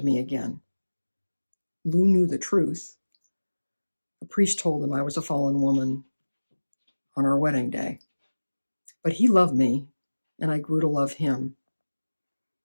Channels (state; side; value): inverted; both; correlation -1.00